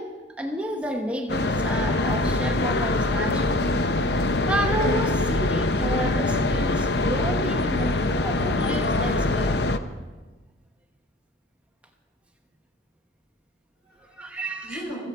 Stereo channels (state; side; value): normal; both; correlation 0.43